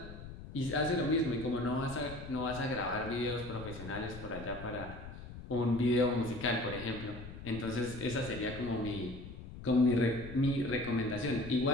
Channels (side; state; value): left; noise; rumble, 12 dB below the sound